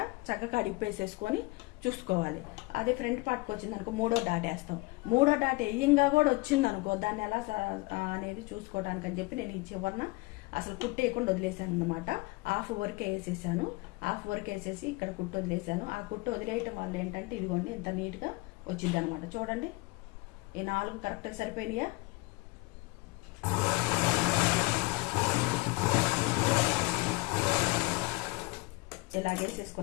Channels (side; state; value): right; quieter; 24.5 dB